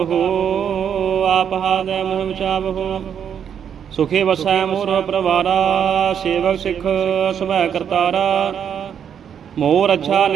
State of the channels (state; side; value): quieter; left; 8.3 dB